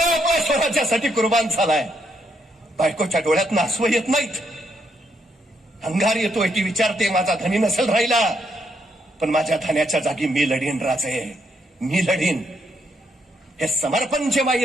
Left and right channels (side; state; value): both; normal; correlation 0.76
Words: आपल्या स्वराज्यासाठी कुर्बान झालाय. बायकोच्या डोळ्यात आसू येत नाहीत, अंगार येतोय. ती विचारते माझा धनी नसेल राहिला, पण माझ्या धन्याच्या जागी मी लढीन राजे, मी लढीन. हे समर्पण जेव्हा